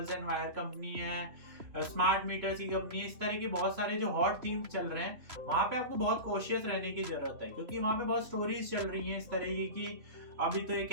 एंड वायर कंपनी है, स्मार्ट मीटर्स की कंपनी, इस तरह के बहुत सारे जो हॉट थीम्स चल रहे हैं, वहाँ पे आपको बहुत कॉशियस रहने की जरूरत है, क्योंकि वहाँ पे बहुत स्टोरीज चल रही हैं इस तरह की अभी तो ये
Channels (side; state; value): left; late; 3.0 ms